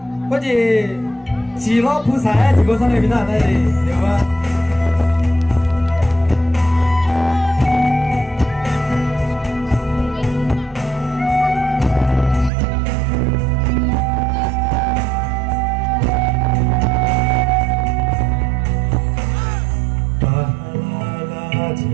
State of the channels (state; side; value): drops out; left; at 12.5 s